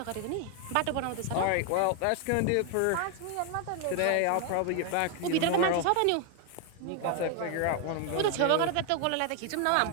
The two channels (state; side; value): different; both; correlation 0.01